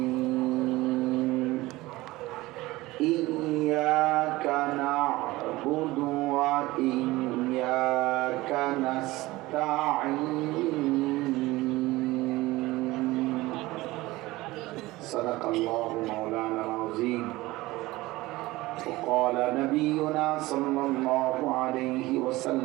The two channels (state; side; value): quieter; left; 19.4 dB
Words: إياك نعبد وإياك نستعين صدق الله مولانا العظيم وقال نبينا صلى الله عليه